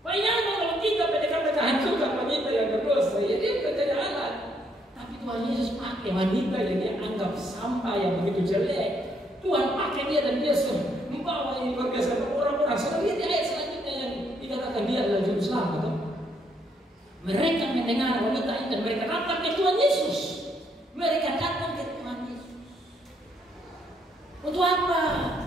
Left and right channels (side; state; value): both; normal; correlation 0.72